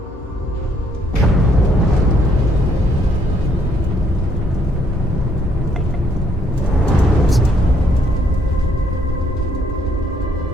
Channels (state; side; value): normal; both; correlation 0.69